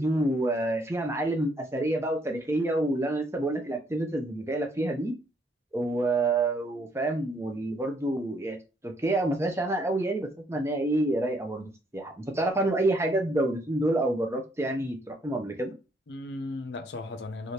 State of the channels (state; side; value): normal; both; correlation 0.69